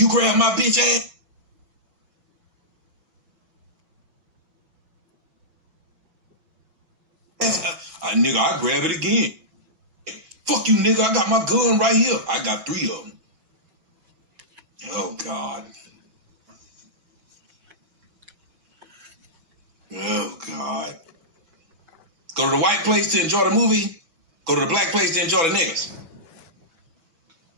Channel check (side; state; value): left; late; 6.1 ms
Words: grab my bitch ass. Nigga, I grab it again. Fuck you, nigga. I got my gun right here. I got 3 of them. Oh, God. Oh, God. Go to the white place to enjoy the movie. Go to the black place to enjoy the niggas.